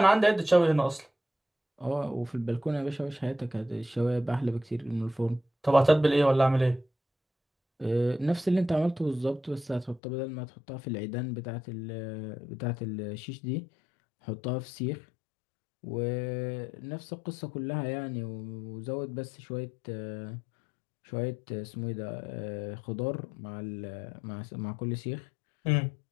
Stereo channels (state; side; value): drops out; right; at 10.0 s